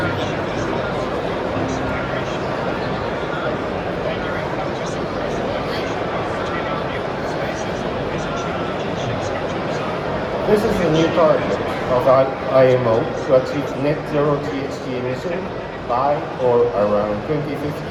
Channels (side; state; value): both; identical; correlation 1.00